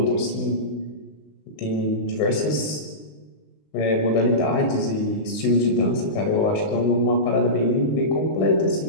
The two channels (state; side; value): late; right; 19 ms